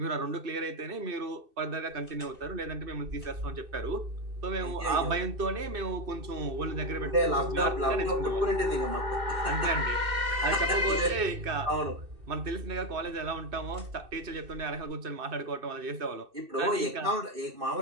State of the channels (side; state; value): left; late; 2.6 ms